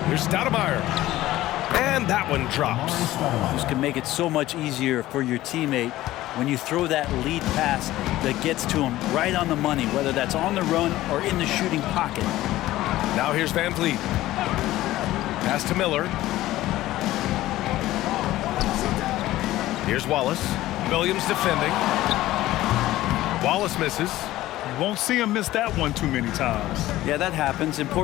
Here's Stoudemire. And that one drops. This can make it so much easier for your teammate when you throw that lead pass that gets to him right on the money, whether that's on the run or in the shooting pocket. Now here's Van Vliet. Pass to Miller. Here's Wallace. Williams defending. Wallace misses. You won't see him miss that one too many times. Yeah, that happens.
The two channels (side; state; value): right; quieter; 15.8 dB